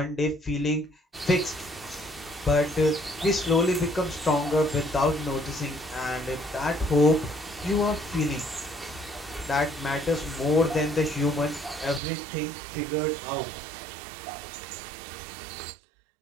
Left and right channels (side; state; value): left; drops out; at 12.0 s